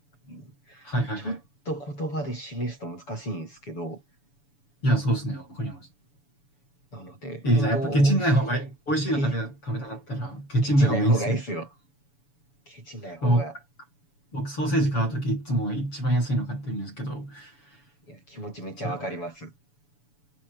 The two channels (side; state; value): right; late; 7.0 ms